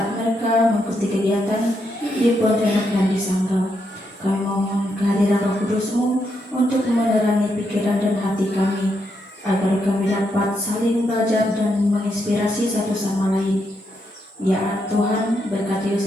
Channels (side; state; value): both; normal; correlation 0.80